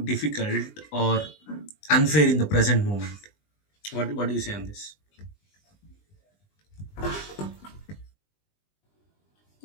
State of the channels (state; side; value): late; right; 20 ms